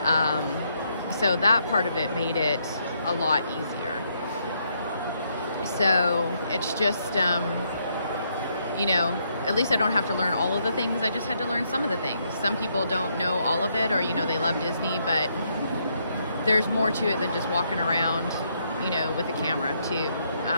So that part of it made it a lot easier. So it's just, you know, at least I don't have to learn all of the things. I just had to learn some of the things. Some people don't know all of it, or, you know, they love Disney, but there's more to it than just walking around, you know, with a camera too,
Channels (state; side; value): inverted; both; correlation -0.75